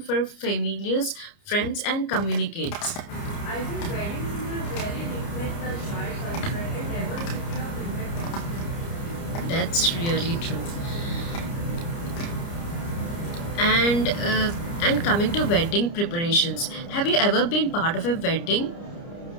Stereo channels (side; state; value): right; late; 29 ms